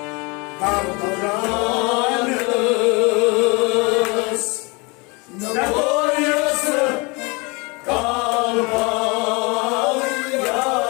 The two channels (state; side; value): quieter; right; 28.2 dB